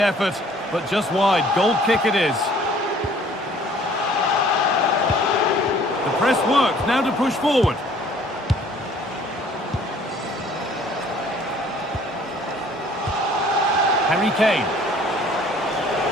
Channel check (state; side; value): normal; both; correlation 0.55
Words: but just wide. Goal kick it is. The press works. Now to push forward. Harry Kane.